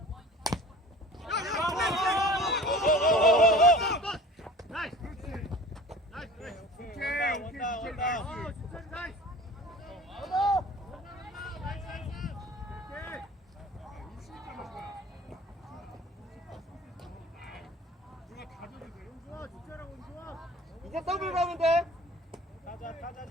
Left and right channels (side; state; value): both; normal; correlation 0.43